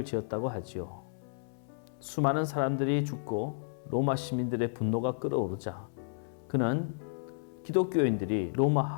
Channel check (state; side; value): silent; right; 56 dB below the other